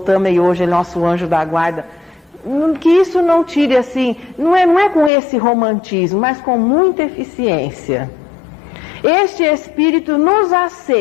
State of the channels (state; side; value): drops out; right; at 5.1 s